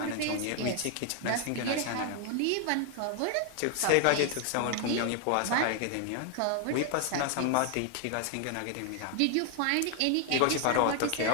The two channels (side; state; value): both; different; correlation 0.00